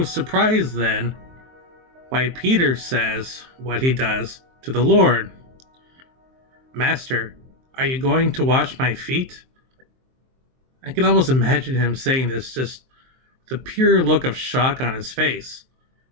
surprise then why Peter says what he does to the Lord. Master, are you going to wash my feet? I can almost imagine him saying this just with a pure look of shock on his face.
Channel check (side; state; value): left; late; 23 ms